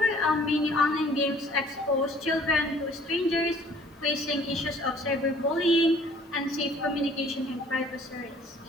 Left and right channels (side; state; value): both; normal; correlation 0.55